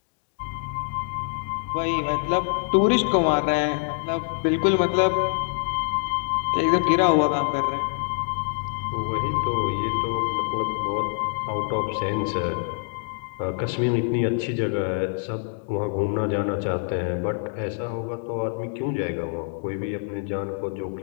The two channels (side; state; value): right; silent; 62 dB below the other